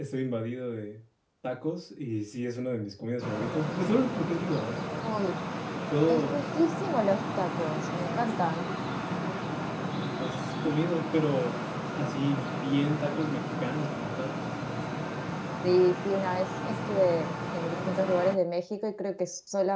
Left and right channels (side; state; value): both; identical; correlation 1.00